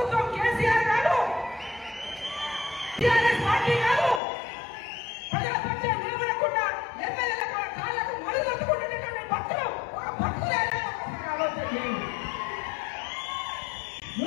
కేసీఆర్ కాదు, టీఆర్ఎస్ పార్టీ కాదు. ప్రజల పక్షే నిలబడకుండా ఎమ్మెల్యేల కాళ్ళకు మడుగొట్టుకుంటున్నటువంటి భక్తులు ఒక భక్తులైనా ఒకసారి ఆలోచన చేయండి.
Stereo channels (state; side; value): drops out; right; at 4.2 s